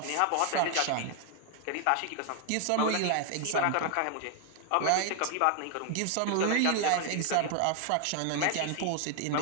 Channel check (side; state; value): both; different; correlation 0.00